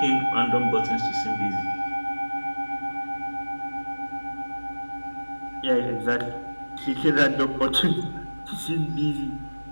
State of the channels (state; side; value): inverted; both; correlation -1.00